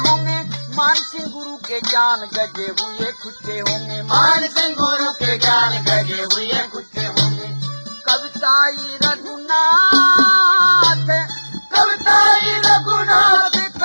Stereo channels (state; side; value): inverted; both; correlation -1.00